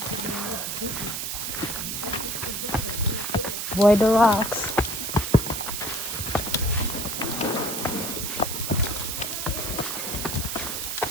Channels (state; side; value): noise; right; hiss, 3 dB below the sound